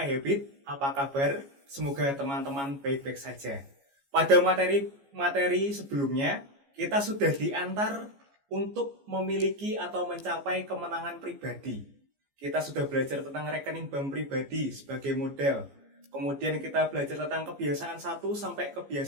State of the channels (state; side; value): late; left; 14 ms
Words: iHabit, apa kabar? Semoga teman-teman baik-baik saja. Pada materi sebelumnya, kita sudah diantar untuk memiliki atau mencapai kemenangan pribadi. Kita sudah belajar tentang rekening bank pribadi sebagai model. Kemudian kita belajar tentang kebiasaan 1 sampai